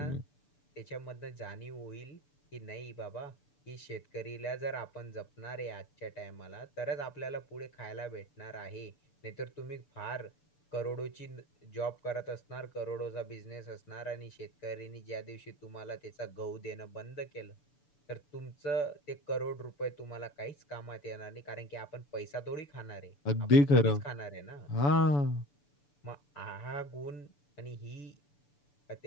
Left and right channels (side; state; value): right; late; 6.9 ms